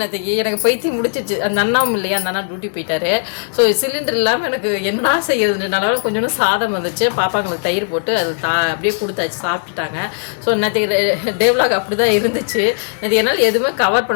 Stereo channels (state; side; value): silent; right; digital silence